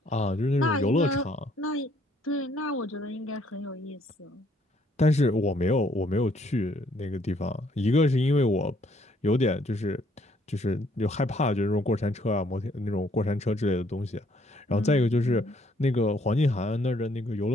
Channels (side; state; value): both; normal; correlation 0.66